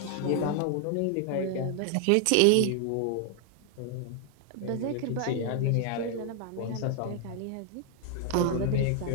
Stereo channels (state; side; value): different; both; correlation 0.00